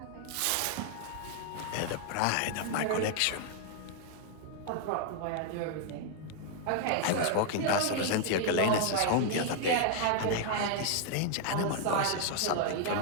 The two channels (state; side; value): different; both; correlation 0.00